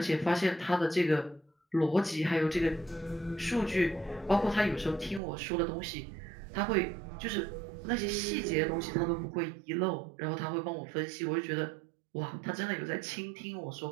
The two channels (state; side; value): drops out; left; at 5.2 s